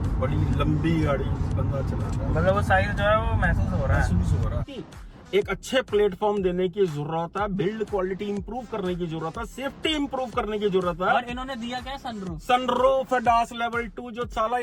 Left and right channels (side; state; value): both; identical; correlation 1.00